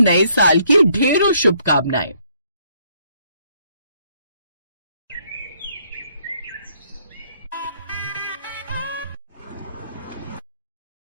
साल की ढेरों शुभकामनाएं।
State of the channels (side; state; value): both; inverted; correlation -0.68